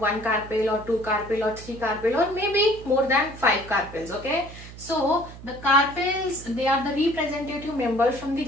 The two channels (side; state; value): right; noise; hum, 15 dB below the sound